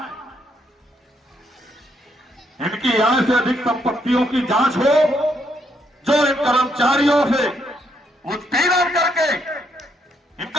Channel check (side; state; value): both; normal; correlation 0.74